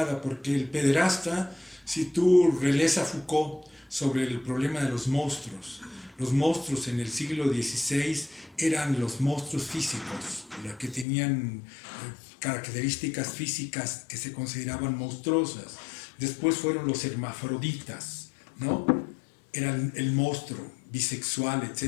porque el pederasta, si tú relees a Foucault sobre el problema de los monstruos en el siglo XVI eran los monstruos físicos, que tenían características físicas que se consideraban monstruosas. Después fueron los hermafroditas, ¿no? Eran el monstruo, bisexual,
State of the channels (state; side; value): drops out; right; at 11.1 s